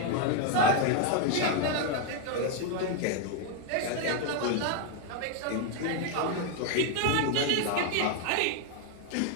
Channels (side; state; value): both; different; correlation 0.01